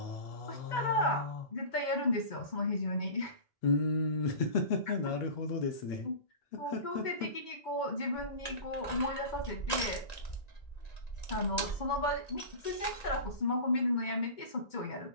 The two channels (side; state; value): right; late; 1.9 ms